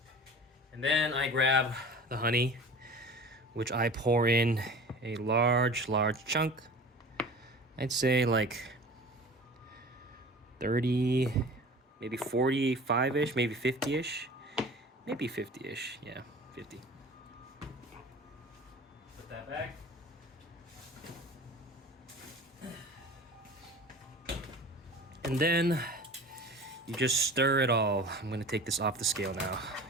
And then I grab the honey, which I pour in a large chunk. I'd say like 30, maybe 45-ish, maybe 50-ish. Maybe 50-ish, yeah, 50. Put that back. And then you just stir it all. I'm gonna take this off the scale now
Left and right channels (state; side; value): normal; both; correlation 0.40